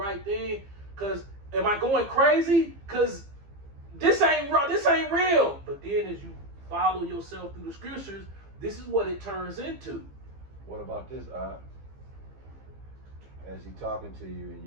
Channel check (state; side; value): late; left; 15 ms